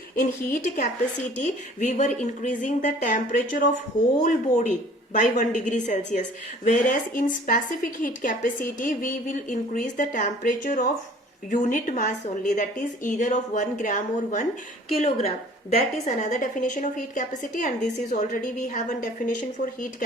in heat capacity we were increasing the temperature of whole body by 1 degree Celsius, whereas in specific heat capacity we will increase the temperature of unit mass only, that is either of 1 gram or 1 kilogram. That is another definition of heat capacity, and this is already we have a definition for heat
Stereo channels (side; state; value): both; normal; correlation 0.51